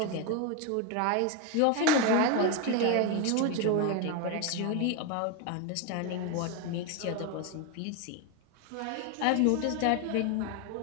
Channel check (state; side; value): different; both; correlation 0.02